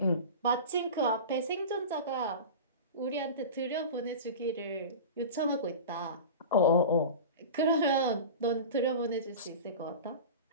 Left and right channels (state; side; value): inverted; both; correlation -0.31